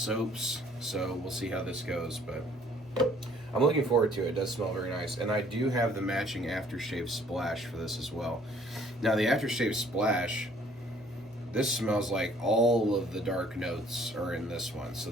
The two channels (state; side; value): normal; both; correlation 0.59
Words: so we'll see how this goes, but I'm looking forward to it. It does smell very nice, and I do have the matching aftershave splash for this as well. Now the aftershave splash, this smells like all of the dark notes are in this one, so